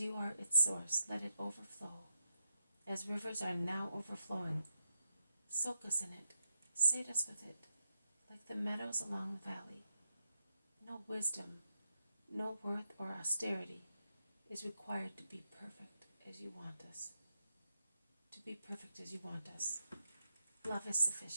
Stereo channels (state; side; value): inverted; both; correlation -0.84